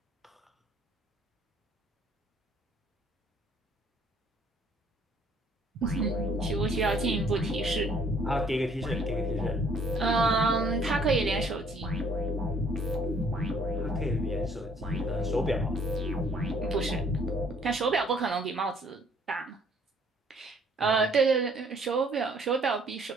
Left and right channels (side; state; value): both; normal; correlation 0.61